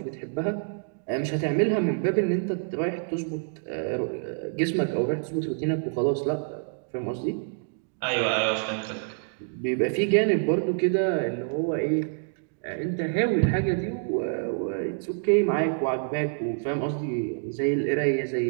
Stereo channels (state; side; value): silent; left; digital silence